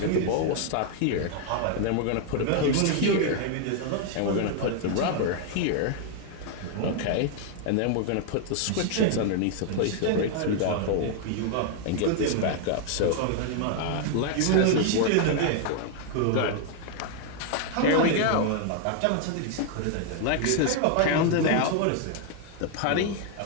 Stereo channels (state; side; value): different; both; correlation 0.00